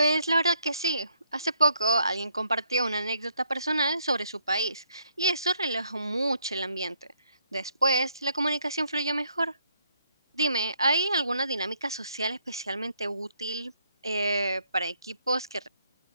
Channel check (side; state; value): both; inverted; correlation -0.72